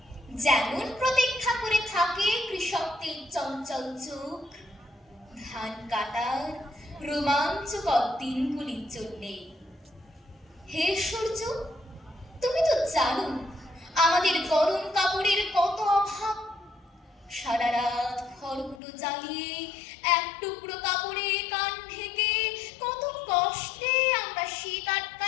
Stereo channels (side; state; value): right; drops out; at 18.8 s